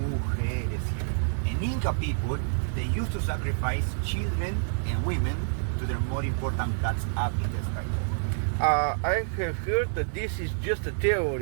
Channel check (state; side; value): silent; left; digital silence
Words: here. And Inca people, they used to sacrifice children and women to their more important plants up in the sky. I have heard that this is just a